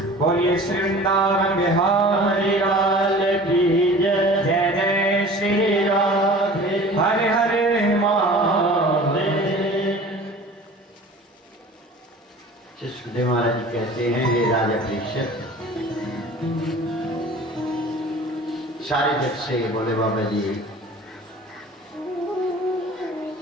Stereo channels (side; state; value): both; normal; correlation 0.42